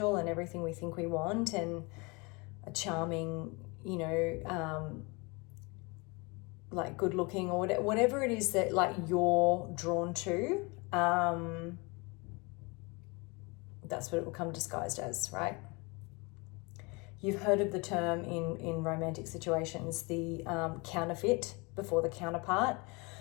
and everything we think we want, and a charming, like good looking, or whatever it is that like you're drawn to. That's what it will come disguised as, right? You've heard of the term in romantic situations, the counterfeit before the counterpart,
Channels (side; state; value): right; quieter; 28.0 dB